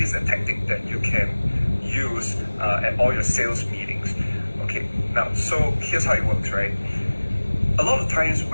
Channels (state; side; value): inverted; both; correlation -1.00